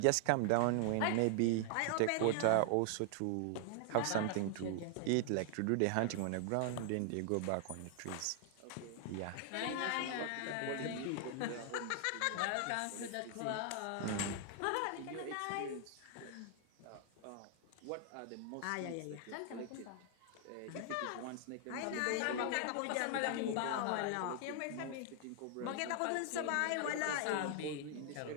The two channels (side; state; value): both; different; correlation 0.00